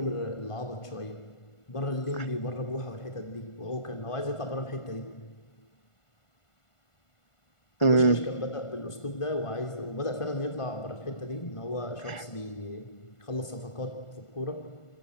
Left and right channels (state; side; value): late; right; 1.5 ms